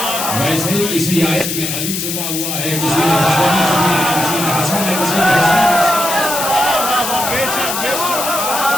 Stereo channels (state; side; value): noise; left; hiss, 3 dB below the sound